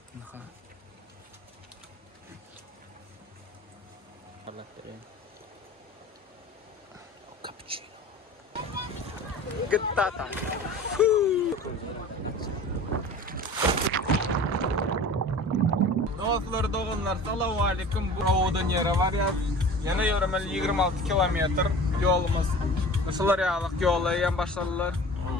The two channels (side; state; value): both; normal; correlation 0.40